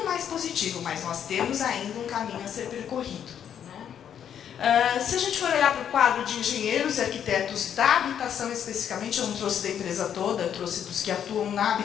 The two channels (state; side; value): quieter; right; 9.0 dB